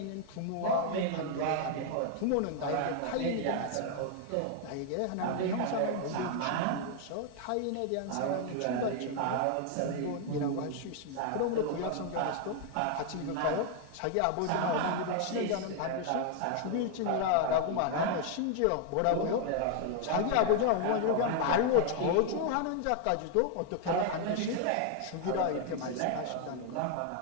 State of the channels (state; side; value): different; both; correlation 0.00